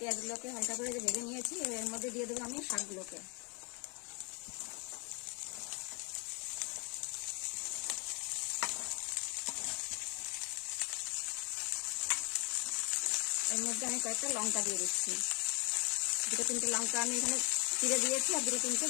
পেঁয়াজগুলোকে হালকা করে ভেজে নিয়েছি। এর মধ্যে দিয়ে দেবো আমি শাকগুলোকে। এর মধ্যে আমি কয়েকটা লঙ্কা দিয়ে দিচ্ছি। দুটো তিনটে লঙ্কা আমি এখানে চিড়ে দিয়েছি আর দুটো তিনটে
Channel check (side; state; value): right; quieter; 32.5 dB